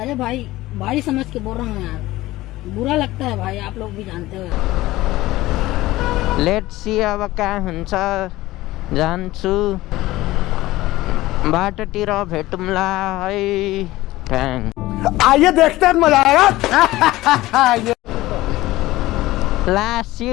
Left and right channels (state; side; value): quieter; right; 17.6 dB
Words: अरे भाई भाई समझ के बोल रहा हूँ यार बुरा लगता है भाई आप लोग भी जानते हो लेट्स सी अब कहाँ हुन्छ जान्छु बाटोतिर भेटौँला है थ्याङ्क आइए देखते हैं मजा आएगा लास्ट